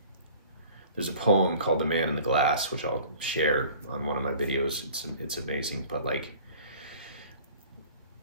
there's a poem called The Man in the Glass, which I'll share on one of my videos. It's amazing. But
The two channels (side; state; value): both; inverted; correlation -0.47